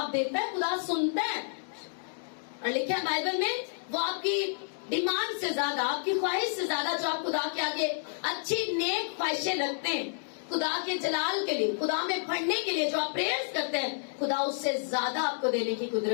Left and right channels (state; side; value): silent; right; digital silence